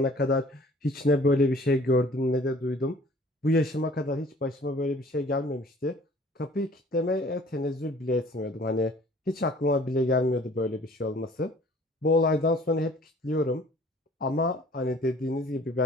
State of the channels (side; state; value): both; normal; correlation 0.52